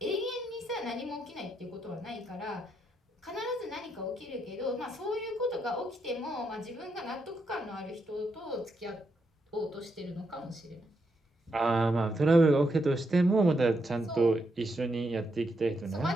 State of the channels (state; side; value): normal; both; correlation 0.80